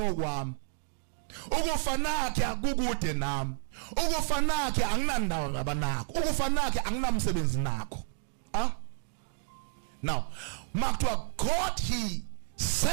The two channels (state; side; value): silent; left; digital silence